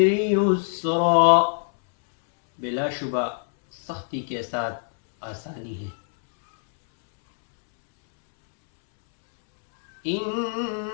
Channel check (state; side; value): silent; right; 63 dB below the other